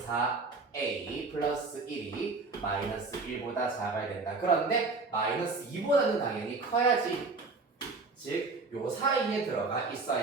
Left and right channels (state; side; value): quieter; left; 3.9 dB